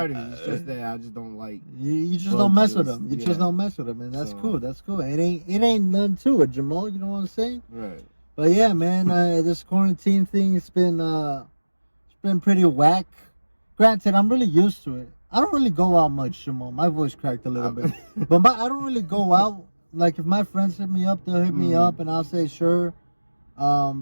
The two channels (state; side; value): inverted; both; correlation -1.00